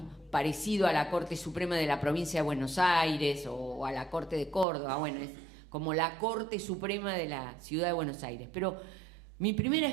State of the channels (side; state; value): left; drops out; at 4.7 s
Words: parecido a la Corte Suprema de la Provincia de Buenos Aires o a la Corte de Córdoba, bueno, es como la Corte Suprema de la Ciudad de Buenos Aires. Pero mi primera